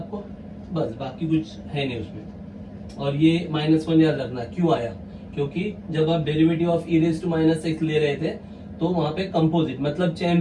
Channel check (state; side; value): identical; both; correlation 1.00